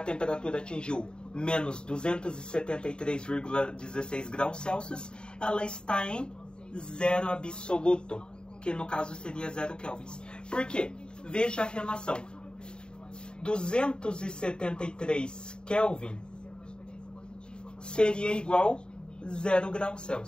atingiu menos 273,16 graus Celsius, ela está em zero absoluto, que no caso seria 0 Kelvin. Por quê? Veja a relação. 273 Kelvin seria igual 0 graus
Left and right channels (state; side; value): late; right; 0.049 ms